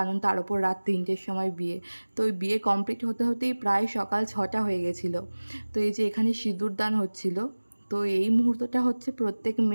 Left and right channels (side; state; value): both; inverted; correlation -1.00